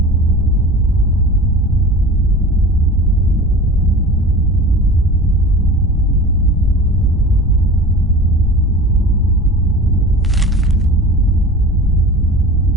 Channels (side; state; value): both; normal; correlation 0.37